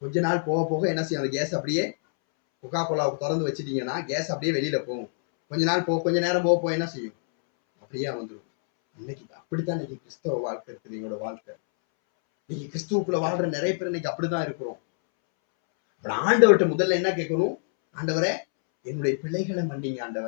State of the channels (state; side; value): silent; right; 61 dB below the other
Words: கொஞ்ச நாள் போக போக என்ன செய்யும்? அந்த கேஸ் அப்படியே, கொக்கா கோலாவை திறந்து வச்சுட்டீங்கன்னா கேஸ் அப்படியே வெளியில போகும். கொஞ்ச நேரம் போக என்ன செய்யும்? அப்படியே வந்துடும். இன்னைக்கு அப்படித்தான் இன்னைக்கு கிறிஸ்தவ வாழ்க்கை இருக்குது. எங்களோட வாழ்க்கை இன்னைக்கு கிறிஸ்துவுக்குள்ள வாழ்ற நிறைய பேர் இன்னைக்கு அப்படிதான் இருக்கிறோம். ஆண்டவர்கிட்ட முதல்ல என்ன கேட்கணும்? ஆண்டவரே என்னுடைய பிள்ளைகளை மன்னிங்க.